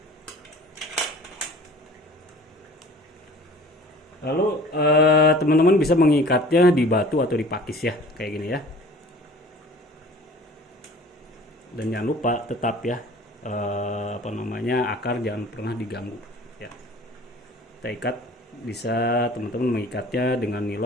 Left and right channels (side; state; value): both; normal; correlation 0.47